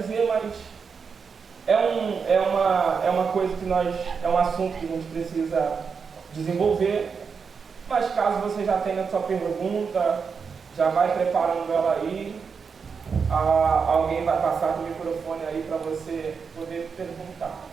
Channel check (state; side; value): quieter; left; 5.8 dB